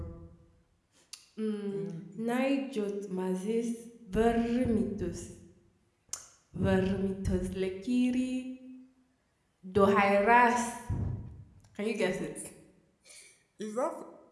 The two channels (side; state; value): both; identical; correlation 1.00